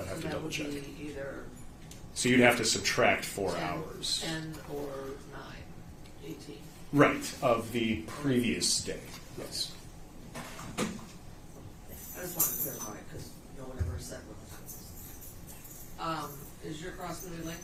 have So to that double would check. be either So you'd have to subtract 4 10, hours. 10 or 9, 18. Right, of the previous day, yes. I just wanted to clarify because no one ever said what the time was. Is your cross going to be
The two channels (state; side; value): identical; both; correlation 1.00